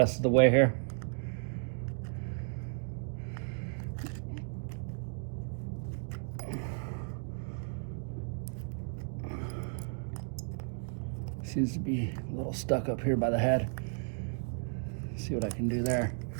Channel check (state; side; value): silent; left; 55 dB below the other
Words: of the way here. Seems to be a little stuck up here by the head. See what I can do there.